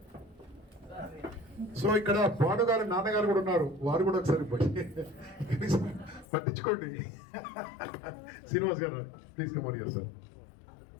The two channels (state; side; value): drops out; right; at 6.2 s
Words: So ఇక్కడ భానుగారు నాన్నగారు కూడా ఉన్నారు, వారు కూడా ఒకసారి పట్టించుకోండి. శ్రీనివాస్ గారు please come on here sir.